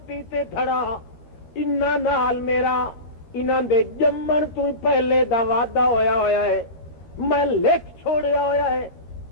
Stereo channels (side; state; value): right; late; 13 ms